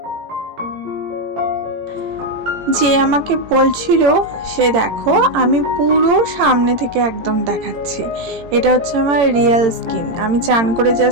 যে আমাকে বলছিল সে দেখো আমি পুরো সামনে থেকে একদম দেখাচ্ছি। এটা হচ্ছে আমার রিয়েল স্কিন। আমি চান করে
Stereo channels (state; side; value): late; left; 18 ms